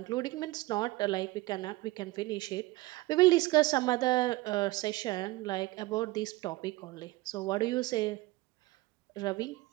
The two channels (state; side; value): quieter; left; 19.7 dB